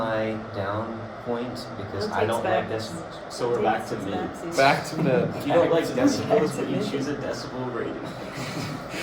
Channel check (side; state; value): both; identical; correlation 1.00